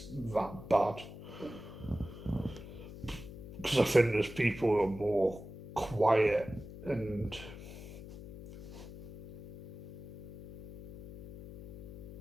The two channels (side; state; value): left; noise; hum, 12 dB below the sound